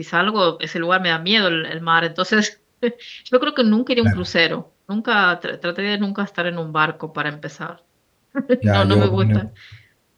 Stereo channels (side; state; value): both; identical; correlation 1.00